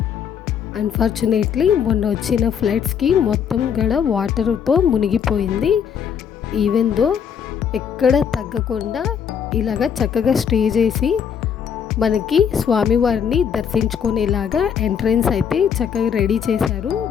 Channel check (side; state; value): right; quieter; 7.7 dB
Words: అన్ఫార్చునేట్లీ మొన్న వచ్చిన ఫ్లడ్స్కి మొత్తం గడ వాటర్తో మునిగిపోయింది. ఈవెన్ దో ఎక్కడ తగ్గకుండా ఇలాగ చక్కగా స్టే చేసి మనకి స్వామివారిని దర్శించుకునేలాగా ఎంట్రన్స్ అయితే చక్కగా రెడీ చేశారు.